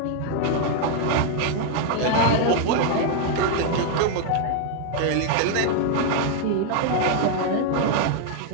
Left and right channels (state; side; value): different; both; correlation 0.00